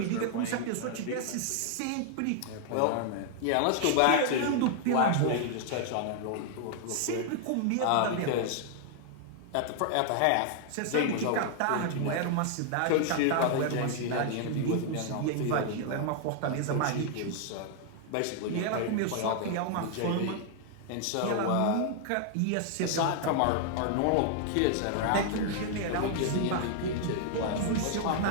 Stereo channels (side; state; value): both; different; correlation 0.00